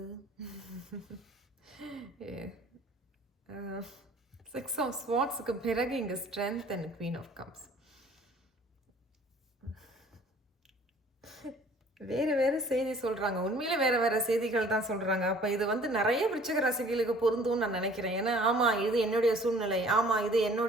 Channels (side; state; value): both; normal; correlation 0.53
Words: 6 ஆஃப் ஸ்வார்ட்ஸுக்கு பிறகு இங்கே strength and queen of cups. வேறு வேறு செய்தி சொல்கிறாங்க. உண்மையிலே வேறு வேறு செய்திகள் தான் சொல்கிறாங்க. அப்போ இது வந்து நிறைய விருச்சிக ராசிகளுக்கு பொருந்தும்னு நான் நினைக்கிறேன். ஏன்னா ஆமாம் இது என்னுடைய சூழ்நிலை, ஆமாம் இது